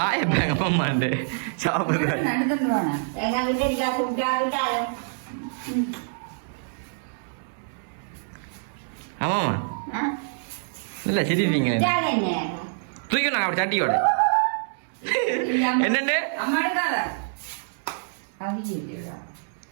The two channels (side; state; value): left; silent; digital silence